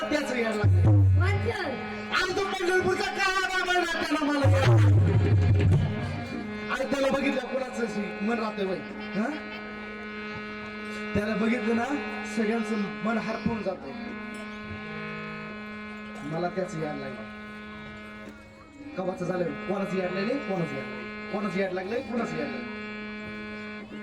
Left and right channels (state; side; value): identical; both; correlation 1.00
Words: त्याचं याड लागलं कोणतं आणि तो पंढरपूरचा काळा बाबा त्याला मला याड आणि त्याला बघितलं कोणाचं मन राहतंय बाई हा त्याला बघितलं ना सगळ्यांचं मन हरपून जात मला त्याच याड लागलं कवाचं झालं कोणाचं याड लागले कोणाचं याड लागलंय कोणाचं याड लागलंय